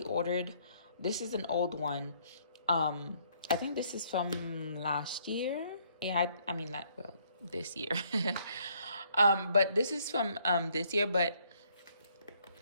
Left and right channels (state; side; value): inverted; both; correlation -0.67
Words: ordered, this is an old one. I think this is from last year. Yeah, I mean, not, well, this year. But this is from this year, but